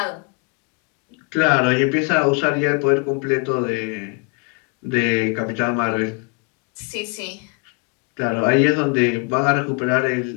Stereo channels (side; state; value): right; quieter; 33.3 dB